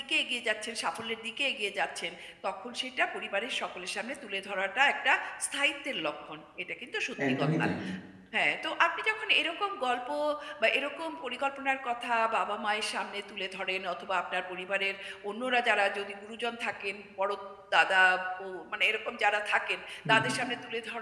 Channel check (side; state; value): both; identical; correlation 1.00